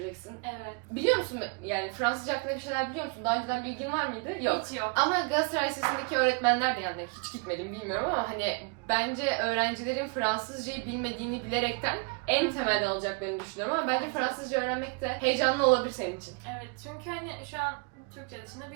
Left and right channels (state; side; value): quieter; left; 33.1 dB